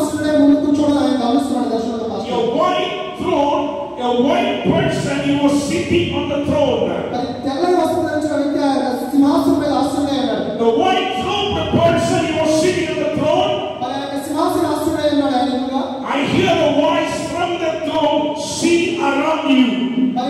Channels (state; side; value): identical; both; correlation 1.00